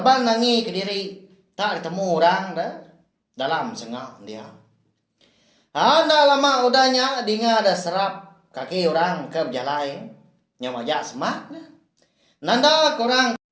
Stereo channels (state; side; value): identical; both; correlation 1.00